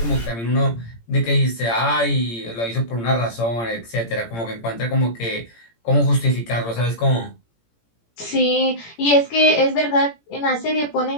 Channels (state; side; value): late; right; 17 ms